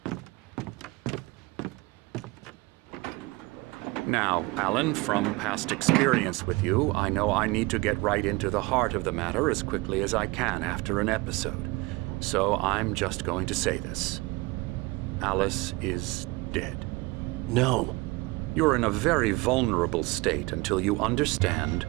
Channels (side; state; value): left; quieter; 23.4 dB